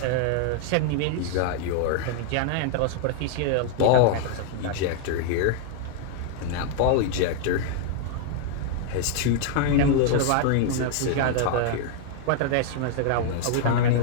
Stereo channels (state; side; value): different; both; correlation 0.00